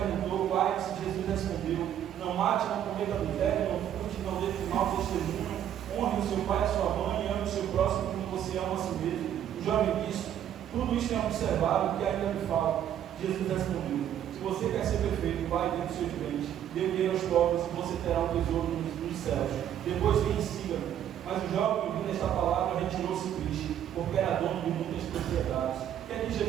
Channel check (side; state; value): left; quieter; 10.4 dB